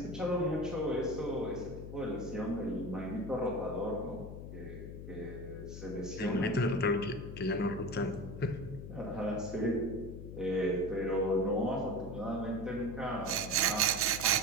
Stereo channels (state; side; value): noise; left; hum, 9 dB below the sound